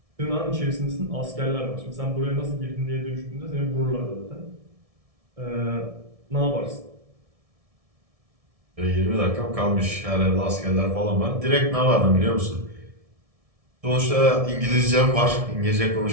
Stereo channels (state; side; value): late; left; 1.7 ms